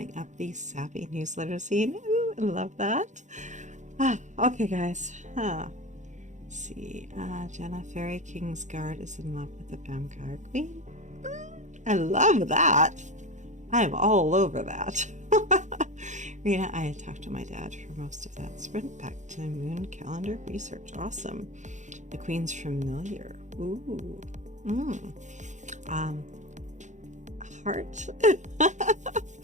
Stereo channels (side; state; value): left; late; 0.35 ms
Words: up the sappy newsletter scene. Ooh, I love that. Okay, guys. Let's see. Jenna, Fairy Kingsguard is in love with the Vampire Queen. I love that. I am all over that. Rita, I had talked to my dad for most of that sprint back to moon calendar research. Awesome. The Queen's familiar. Ooh. Heart.